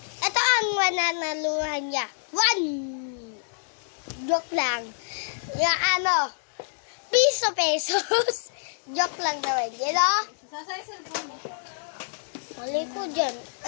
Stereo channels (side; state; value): right; silent; 60 dB below the other